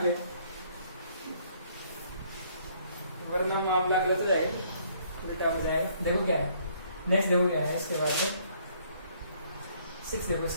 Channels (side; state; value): both; inverted; correlation -0.64